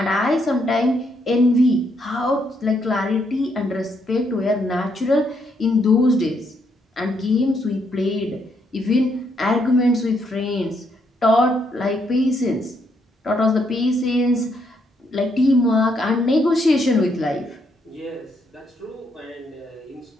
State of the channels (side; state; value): both; normal; correlation 0.75